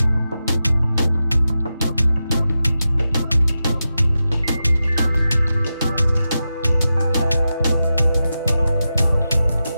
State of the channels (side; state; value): both; inverted; correlation -0.91